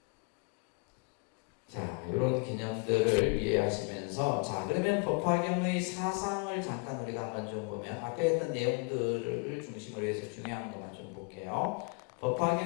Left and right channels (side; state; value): right; quieter; 33.9 dB